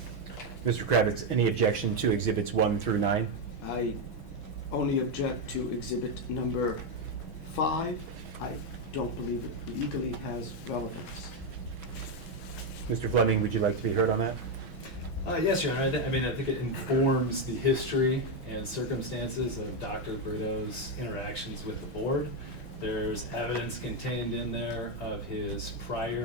Mr. Kravitz, any objection to exhibits 1 through 9? I only object to exhibit number 5, I don't believe it legally has relevance. Mr. Fleming, would you like to be heard on that? Yes, Your Honor. I mean, I think it informs the history and circumstances of Dr. Brito's interactions with the board. There's evidence contained in there of his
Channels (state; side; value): late; right; 6.2 ms